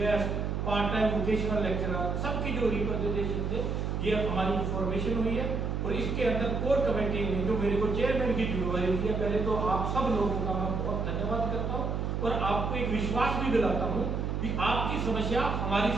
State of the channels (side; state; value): right; noise; hum, 1 dB below the sound